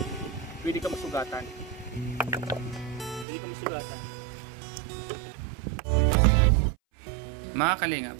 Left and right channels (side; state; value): left; drops out; at 3.2 s